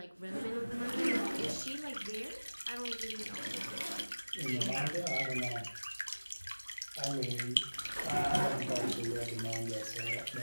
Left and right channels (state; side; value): inverted; both; correlation -1.00